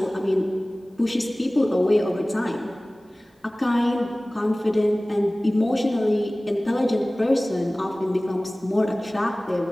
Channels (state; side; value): normal; both; correlation 0.98